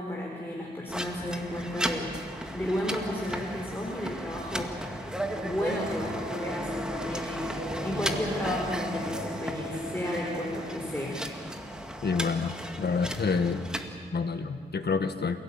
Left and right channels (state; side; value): normal; both; correlation 0.69